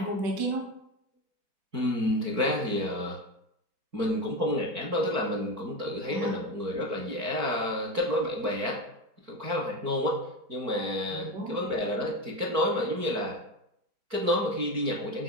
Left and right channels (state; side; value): late; left; 4.5 ms